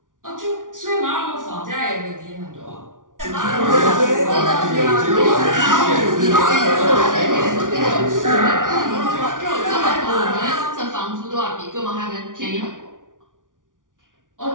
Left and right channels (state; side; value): late; left; 0.88 ms